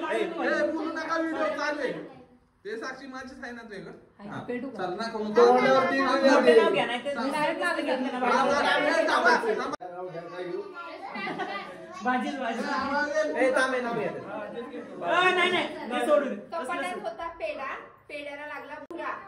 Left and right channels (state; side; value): identical; both; correlation 1.00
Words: व्हिडिओ चालले ते साक्षी माझीच आहे ना तुझ्याकडे. चल ना करून कपाटात होता पेढा, पेढ्याला लागला भुरा.